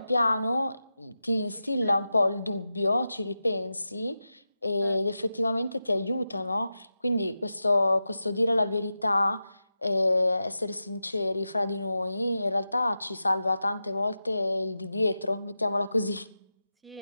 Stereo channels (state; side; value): inverted; both; correlation -0.91